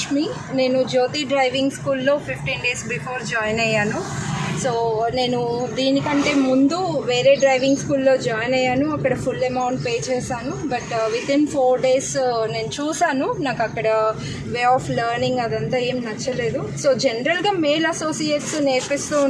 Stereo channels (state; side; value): identical; both; correlation 1.00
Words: నేను జ్యోతి డ్రైవింగ్ స్కూల్లో 15 days బిఫోర్ జాయిన్ అయ్యాను. సో నేను దీనికంటే ముందు వేరే డ్రైవింగ్ స్కూల్లో జాయిన్ అయ్యాను. అక్కడ ఫుల్ అమౌంట్ పే చేశాను. బట్ వితిన్ 4 days నేను చూశాను, నాకు అక్కడ వే ఆఫ్ లెర్నింగ్ అదంతా ఏం నచ్చలేదు. సో జనరల్గా మేల్ అసోసియేట్స్ నేర్పిస్తూ